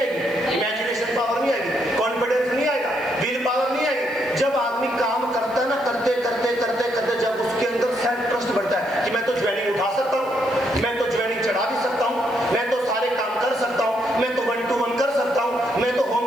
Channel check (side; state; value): right; noise; hiss, 25 dB below the sound